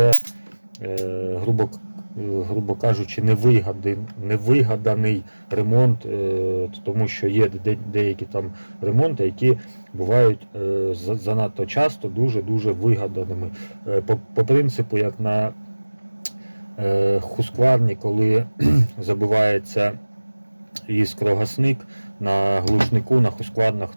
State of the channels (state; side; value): inverted; both; correlation -1.00